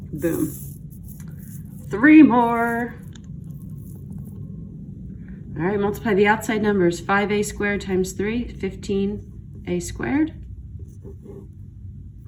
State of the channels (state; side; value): identical; both; correlation 1.00